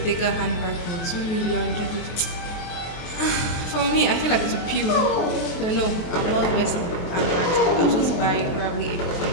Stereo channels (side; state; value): right; late; 23 ms